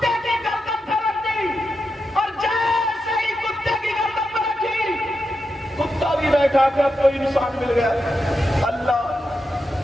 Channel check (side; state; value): both; normal; correlation 0.87